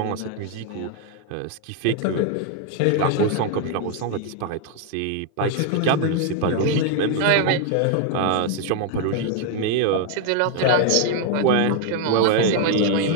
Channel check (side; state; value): both; different; correlation 0.00